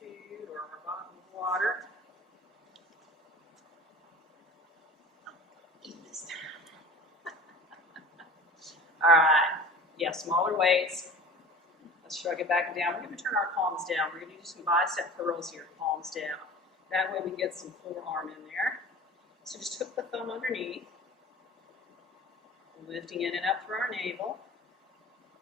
food or our bottle of water. Eat this time. All right. Yeah, smaller weights. Let's shrug it back and down. We're going to turn our palms down. We're going to do some bicep curls here, palms down. That way we get some forearm in there. So just hook the thumb underneath. Lifting in and up through our navel.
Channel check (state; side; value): normal; both; correlation 0.40